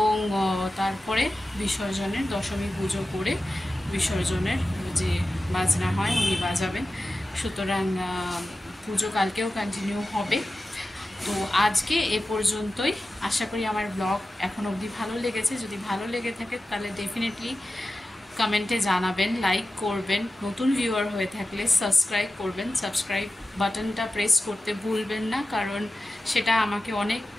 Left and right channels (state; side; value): normal; both; correlation 0.94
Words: তারপরে বিসর্জনের দশমী পুজো করে বিসর্জনের যে বাজনা হয় উনি বাজাবেন। সুতরাং পুজো কালকেও কন্টিনিউ হবে। তো আজকে এ পর্যন্তই। আশা করি আমার ব্লগ এখন অবধি ভালো লেগেছে। যদি ভালো লেগে থাকে তাহলে ডেফিনেটলি কমেন্টে জানাবেন, লাইক করবেন, নতুন ভিউয়ার হয়ে থাকলে সাবস্ক্রাইব করবেন। সাবস্ক্রাইব বাটনটা প্রেস করতে ভুলবেন না, কারণ সেটা আমাকে